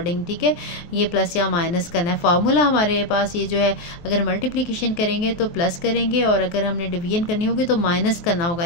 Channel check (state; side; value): late; right; 23 ms